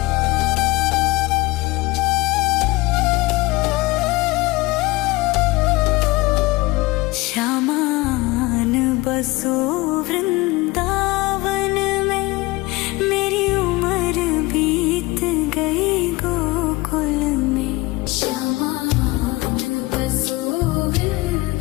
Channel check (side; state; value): right; quieter; 21.8 dB